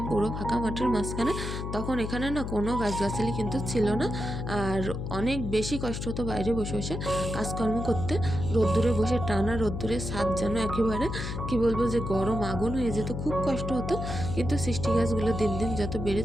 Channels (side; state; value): left; noise; hum, 4 dB below the sound